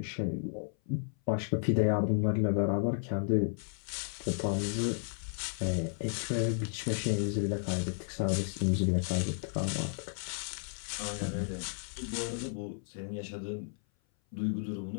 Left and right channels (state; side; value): silent; right; 56 dB below the other